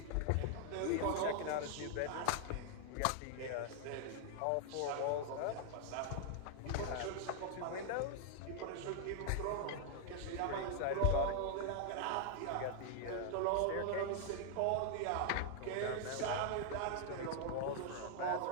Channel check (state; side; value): different; both; correlation 0.00